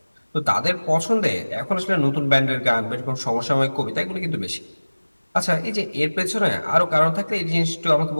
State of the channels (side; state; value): both; inverted; correlation -1.00